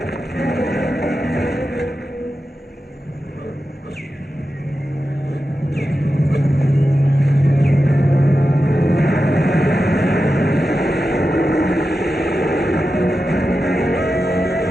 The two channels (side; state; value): both; normal; correlation 0.91